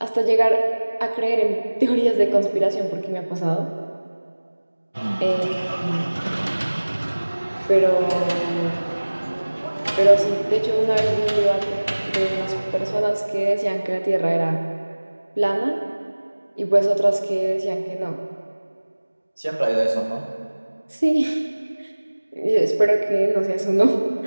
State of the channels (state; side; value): inverted; both; correlation -1.00